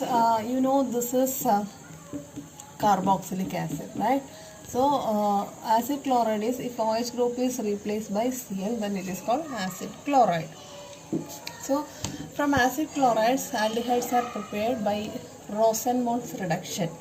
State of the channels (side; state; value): both; identical; correlation 1.00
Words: is carboxylic acid, right? So acid chloride is, if OH group is replaced by Cl, then it is called acid chloride. So from acid chlorides, aldehydes are prepared by Rosenmund's reduction.